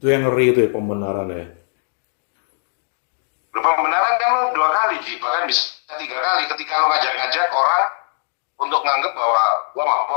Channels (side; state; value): right; silent; digital silence